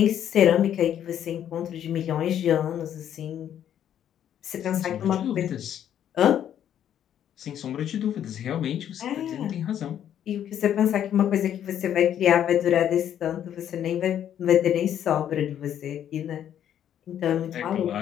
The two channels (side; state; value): right; quieter; 10.1 dB